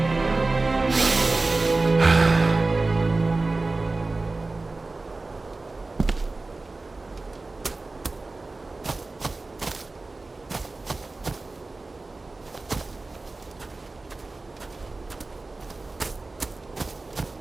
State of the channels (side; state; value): left; quieter; 3.4 dB